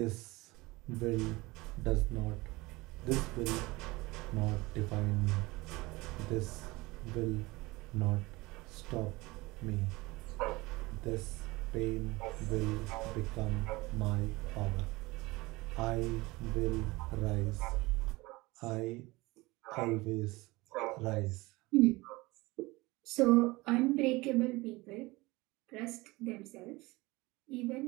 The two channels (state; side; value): quieter; left; 22.0 dB